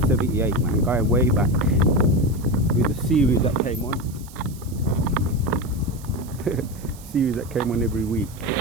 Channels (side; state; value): right; noise; hiss, 21 dB below the sound